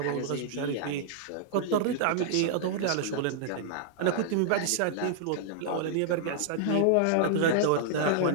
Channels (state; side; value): different; both; correlation -0.01